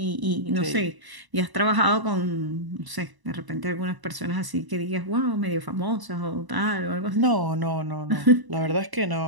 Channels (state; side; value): late; left; 1.0 ms